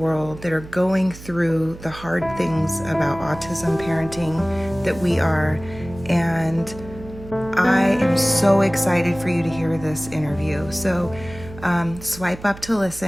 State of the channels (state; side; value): noise; right; hum, 16 dB below the sound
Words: that are going through the hard things about autism parenting that we are. And I am so excited for you to hear this interview. So swipe up to